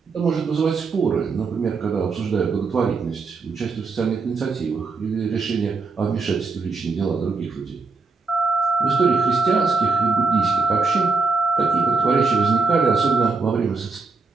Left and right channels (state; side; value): quieter; left; 4.3 dB